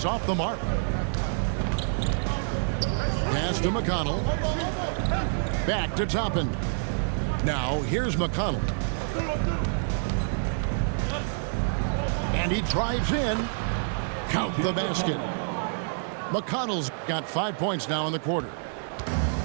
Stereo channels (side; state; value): left; silent; digital silence